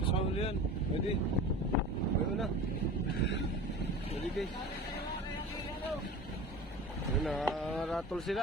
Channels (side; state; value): both; normal; correlation 0.35